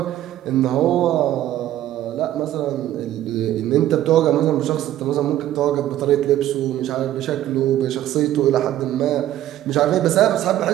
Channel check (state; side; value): quieter; left; 13.0 dB